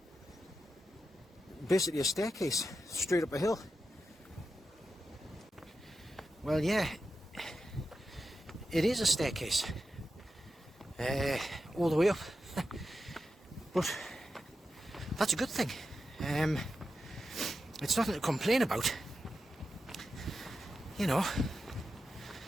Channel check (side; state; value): both; normal; correlation 0.90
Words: basically a staircase straight up a hill. Well, yeah, it is a staircase all the way up, but that's a good thing. It's nothing to complain about. You know,